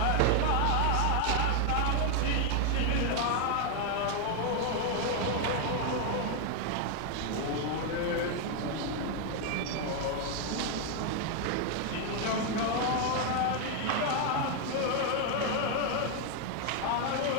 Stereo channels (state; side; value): different; both; correlation 0.01